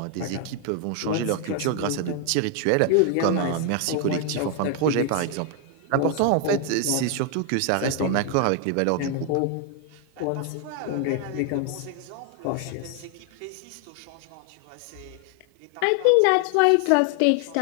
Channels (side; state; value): both; different; correlation 0.00